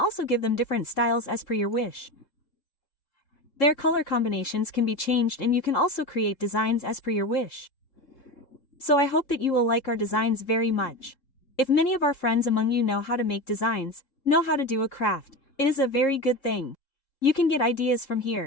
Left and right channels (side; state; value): right; late; 3.7 ms